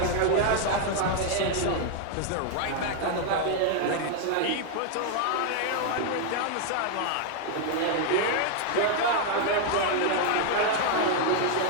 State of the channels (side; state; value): both; different; correlation 0.00